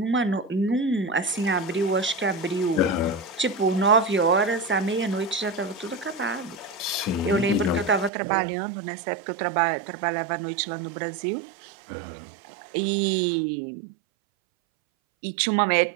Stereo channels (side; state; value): left; drops out; at 8.1 s